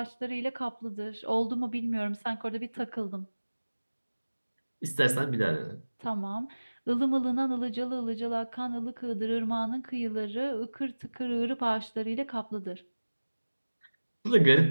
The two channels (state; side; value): inverted; both; correlation -1.00